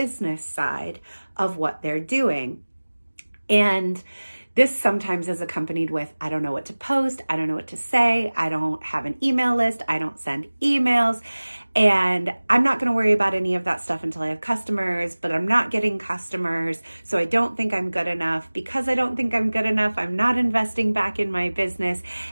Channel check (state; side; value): inverted; both; correlation -1.00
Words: side of what they're doing. And this sometimes is accompanied with, I don't know what to post. I don't know what to say. I don't have an email list. I don't send emails. And I'm not going to worry about any of that stuff until I have customers, but I'm not getting customers. So I don't think I'm good enough. Because I don't think I'm good enough, I'm not investing back in my business.